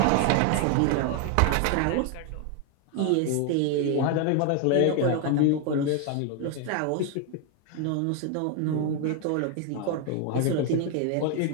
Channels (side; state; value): both; different; correlation 0.01